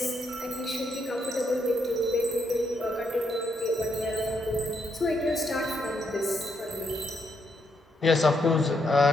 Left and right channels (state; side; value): normal; both; correlation 0.77